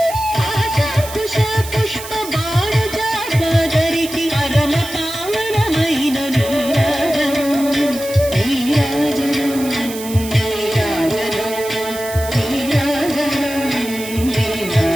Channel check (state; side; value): noise; right; hiss, 12 dB below the sound